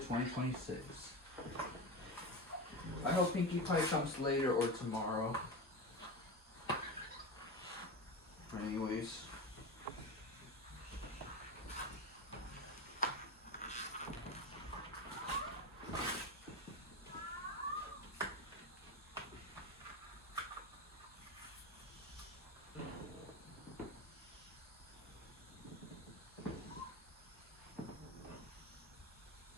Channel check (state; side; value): normal; both; correlation 0.22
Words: I hope Pinkie Pie comes later or tomorrow. Anyways.